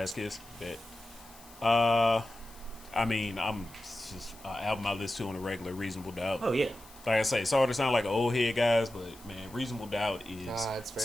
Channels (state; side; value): noise; left; hiss, 22 dB below the sound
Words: Kiss. Bet. I mean, I'm just album I listen to on a regular. Reasonable Doubt. Oh yeah. Like I say, sorry to sound like an old head, guys, but man, Reasonable Doubt is it's fair.